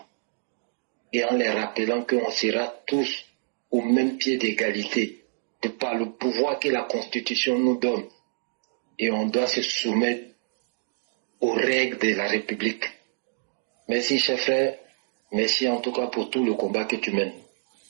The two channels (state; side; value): silent; left; digital silence